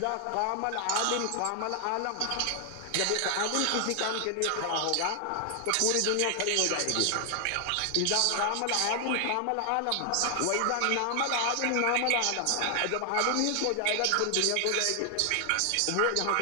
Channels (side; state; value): both; different; correlation 0.00